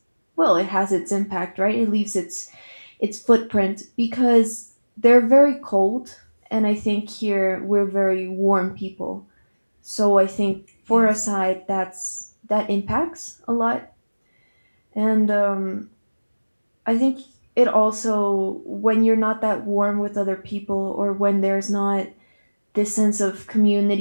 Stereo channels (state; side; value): inverted; both; correlation -1.00